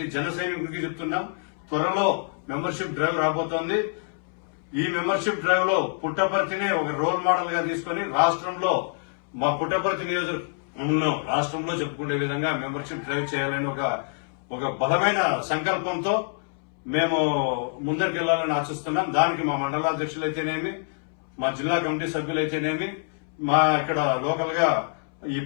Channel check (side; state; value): right; silent; 61 dB below the other